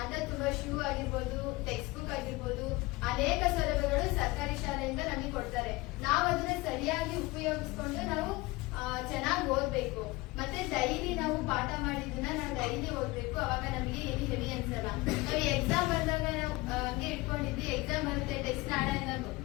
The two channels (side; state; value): right; quieter; 21.6 dB